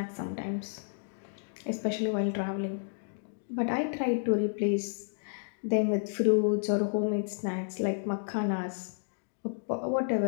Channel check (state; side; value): silent; right; digital silence